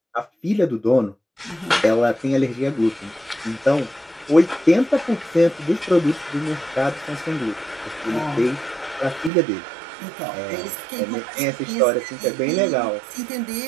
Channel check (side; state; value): left; drops out; at 9.3 s